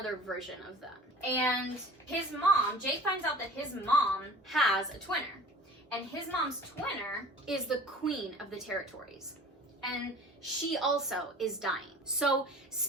version of them. And his mom, Jake finds out that his mom has a twinner. And his mom's twinner is the queen of the territories. And she also is dying. So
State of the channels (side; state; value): both; normal; correlation 0.44